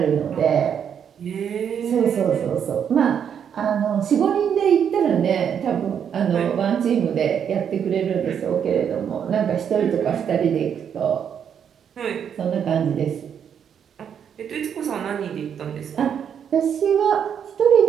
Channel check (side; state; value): left; quieter; 8.1 dB